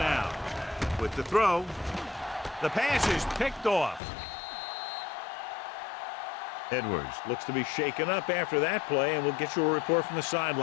With the throw, the pass is picked off. Edwards looks to be shaken up after that play, and we'll get you a report from the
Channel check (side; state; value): right; drops out; at 4.0 s